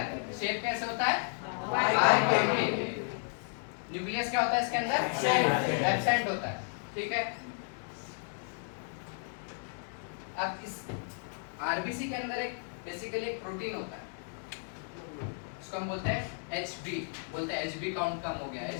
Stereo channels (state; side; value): silent; right; 56 dB below the other